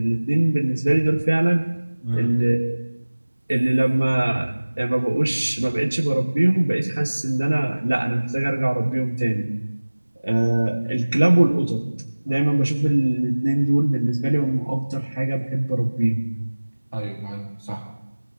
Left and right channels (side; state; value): both; inverted; correlation -1.00